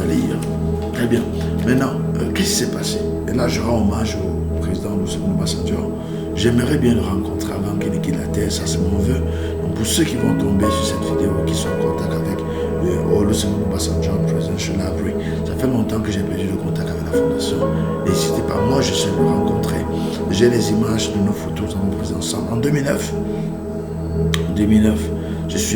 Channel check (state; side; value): identical; both; correlation 1.00